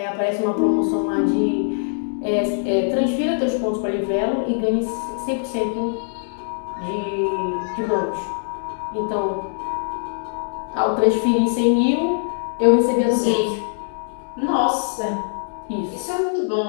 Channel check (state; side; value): silent; right; digital silence